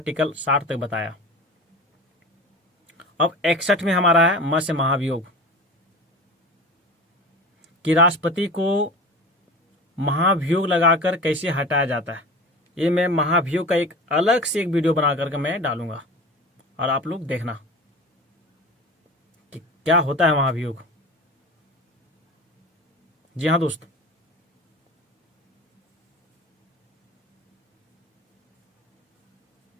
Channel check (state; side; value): normal; both; correlation 0.34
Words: 60 तक बताया। अब 61 में हमारा है म से महाभियोग, कि राष्ट्रपति को महाभियोग लगाकर कैसे हटाया जाता है। ये मैं महाभियोग का एक अलग से एक वीडियो बना करके मैं डालूंगा, और आप लोग देखना कि क्या होता है महाभियोग। जी हाँ दोस्त,